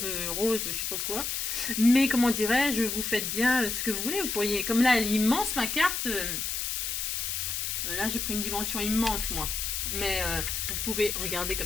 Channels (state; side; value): noise; left; hiss, 2 dB below the sound